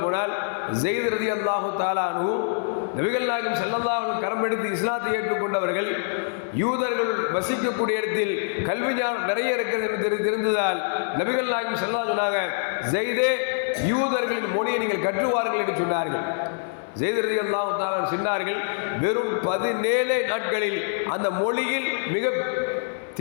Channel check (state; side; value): silent; right; 62 dB below the other